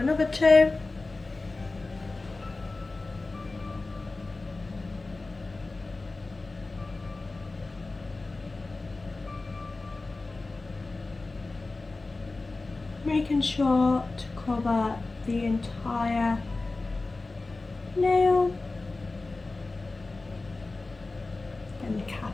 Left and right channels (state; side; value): quieter; right; 3.4 dB